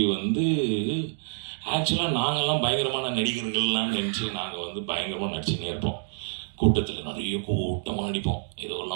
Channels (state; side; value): silent; left; digital silence